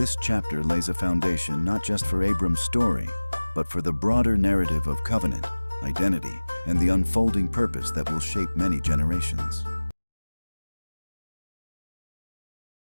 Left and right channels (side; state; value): both; inverted; correlation -1.00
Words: chapter lays a foundation not just for Abram's story, but for the broader narrative of covenant, identity, and the unfolding purpose that will shape many generations.